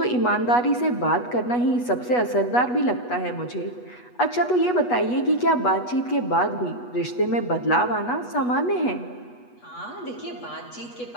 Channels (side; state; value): right; late; 8.2 ms